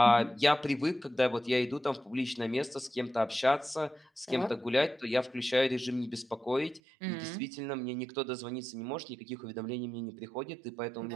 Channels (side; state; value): left; drops out; at 6.8 s